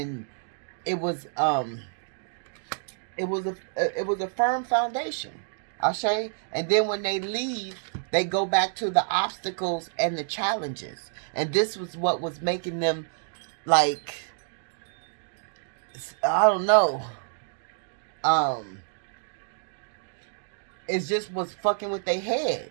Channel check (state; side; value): silent; left; digital silence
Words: it was a firm foundation. Ashe. And then when they leave, they go back to the obstacles and the challenges. And this was what was making them, like, I don't know. It just was fucking with their head.